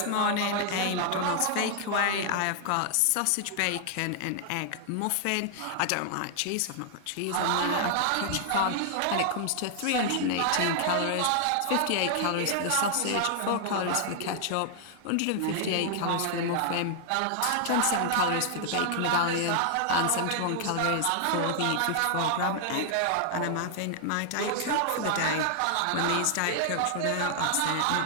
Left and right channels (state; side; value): different; both; correlation 0.00